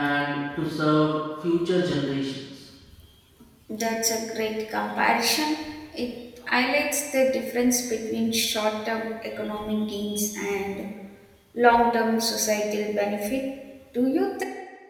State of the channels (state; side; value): identical; both; correlation 1.00